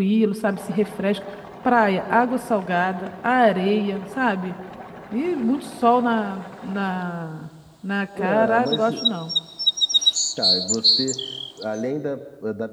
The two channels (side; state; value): both; identical; correlation 1.00